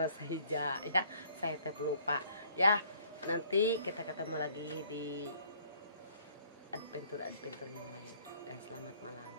Sahija ya. Saya teh pelupa ya. Nanti kita ketemu lagi di adventure yang lain. Dan selamat malam.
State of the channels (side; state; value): both; inverted; correlation -0.59